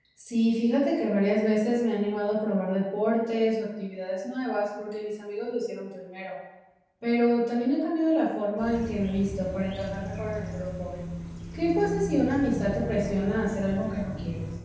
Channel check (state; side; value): identical; both; correlation 1.00